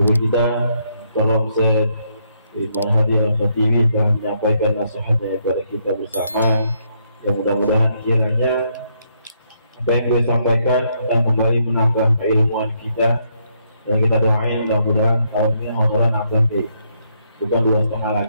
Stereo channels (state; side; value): inverted; both; correlation -0.74